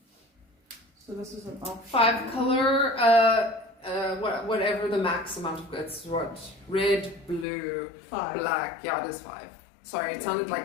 So this is an option. 5 color, whatever the max amount of it's what? Red, blue, 5. black. Yeah, it is 5. Sorry, it Yeah, sounded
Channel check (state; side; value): drops out; right; at 7.5 s